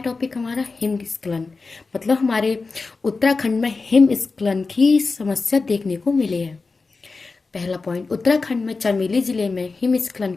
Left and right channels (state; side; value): quieter; right; 4.1 dB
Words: हमारा हिमस्खलन। मतलब हमारे उत्तराखंड में हिमस्खलन की समस्या देखने को मिली है। पहला पॉइंट, उत्तराखंड में चमेली जिले में हिमस्खलन